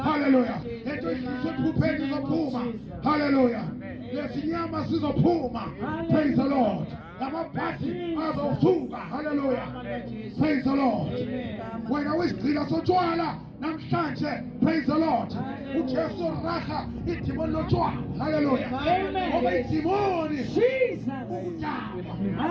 Hallelujah. Lento idlisa iphupheni izophuma. Hallelujah. Lesinyama sizophuma. Praise the Lord. Lamabhasi azosuka. Hallelujah. Praise the Lord. Wena wesigcina sotshwala namhlanje. Praise the Lord. uJesu raha idimoni lotshwala. Hallelujah. Ngoba idimoni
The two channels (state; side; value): identical; both; correlation 1.00